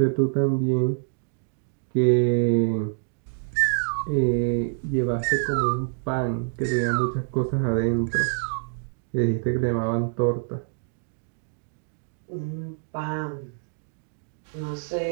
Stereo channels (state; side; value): silent; left; digital silence